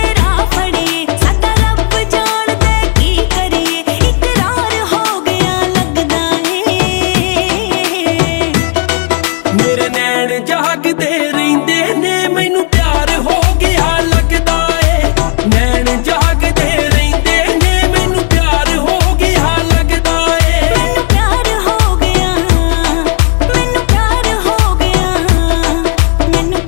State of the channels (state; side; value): quieter; right; 36.6 dB